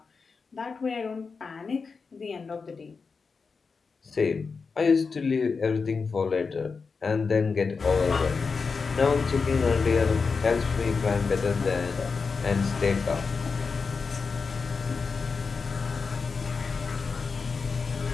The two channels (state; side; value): quieter; right; 4.9 dB